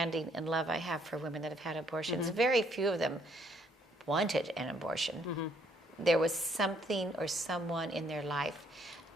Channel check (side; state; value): both; normal; correlation 0.67